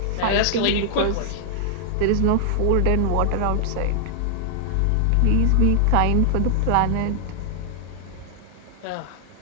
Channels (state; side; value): different; both; correlation -0.01